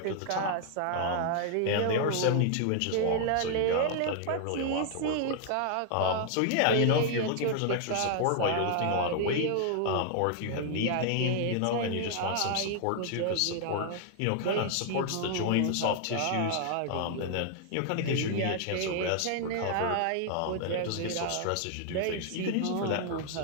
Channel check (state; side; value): different; both; correlation 0.00